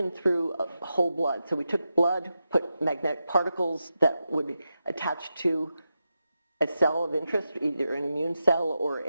through whole blood. So we took blood, put magnetic particles that would attach to a cell of interest, either an immune cell or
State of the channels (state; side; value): inverted; both; correlation -0.89